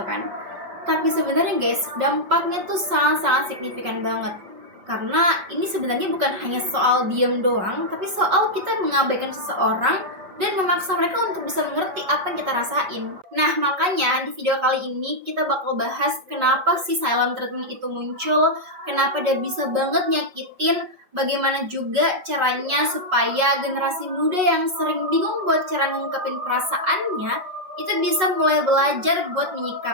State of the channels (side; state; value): left; late; 5.4 ms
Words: kan. Tapi sebenarnya guys, dampaknya tuh sangat-sangat signifikan banget. Karena ini sebenarnya bukan hanya soal diem doang, tapi soal kita mengabaikan seseorang dan memaksa mereka untuk bisa mengerti apa yang kita rasain. Nah, makanya di video kali ini kita bakal bahas kenapa sih silent treatment itu muncul, kenapa dia bisa banget nyakitin, bagaimana juga caranya supaya generasi muda yang sering bingung buat cara ngungkapin perasaannya, itu bisa mulai belajar buat